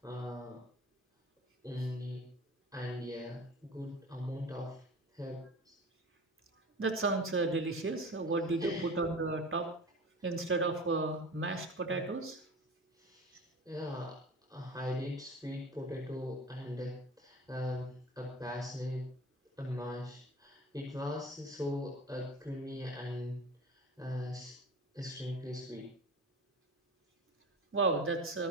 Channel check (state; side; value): normal; both; correlation 0.35